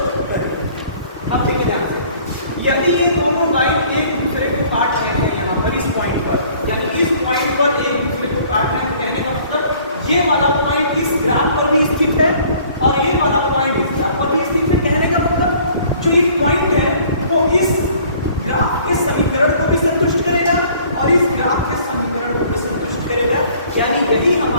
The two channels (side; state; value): both; inverted; correlation -0.55